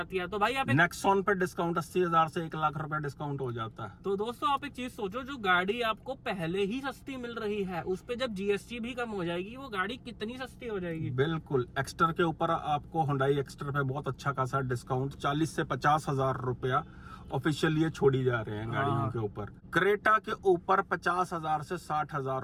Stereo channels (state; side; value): identical; both; correlation 1.00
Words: है। तो भाई आप नेक्सॉन पे डिस्काउंट 80,000 से 1 लाख रुपए डिस्काउंट हो जाता है। तो दोस्तों आप एक चीज सोचो, जो गाड़ी आपको पहले ही सस्ती मिल रही है उस पे जब जीएसटी भी कम हो जाएगी, वो गाड़ी कितनी सस्ती हो जाएगी। बिल्कुल, एक्स्टर के ऊपर आपको हुंडई एक्स्टर पे बहुत अच्छा खासा डिस्काउंट 40 से 50,000 रुपया ऑफिशियल ये छोड़ी जा रहे हैं गाड़ियों के ऊपर। क्रेटा के ऊपर 50,000 से 60,000